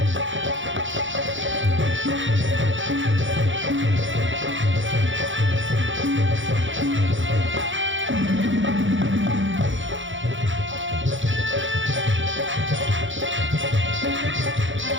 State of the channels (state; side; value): late; left; 0.56 ms